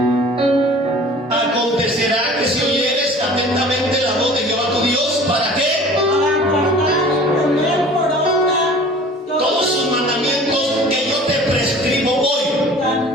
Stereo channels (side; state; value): both; normal; correlation 0.46